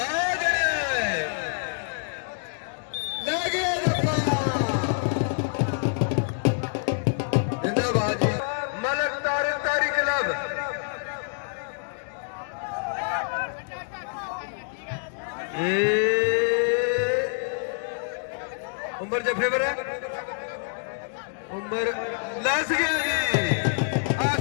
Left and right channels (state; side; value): silent; right; digital silence